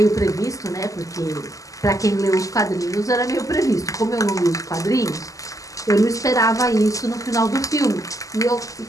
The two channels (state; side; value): late; right; 0.16 ms